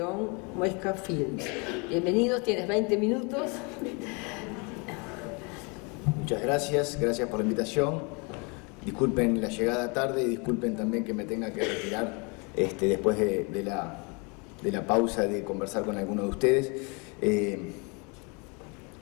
Muesca Films. Bienvenidos, tienes 20 minutos. Muchas gracias por la invitación. Disculpen la llegada tarde y disculpen también que me tenga que retirar después de la pausa de conversar con alguno de ustedes.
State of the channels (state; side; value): quieter; right; 31.6 dB